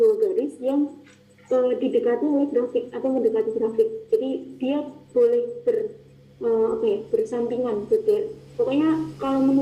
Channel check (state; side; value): identical; both; correlation 1.00